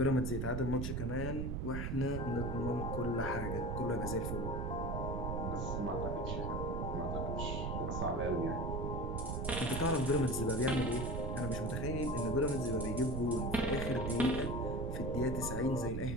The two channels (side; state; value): right; noise; rumble, 1 dB below the sound